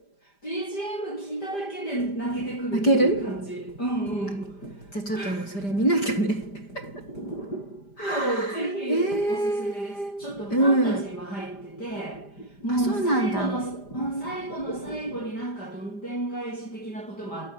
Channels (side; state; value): right; late; 5.0 ms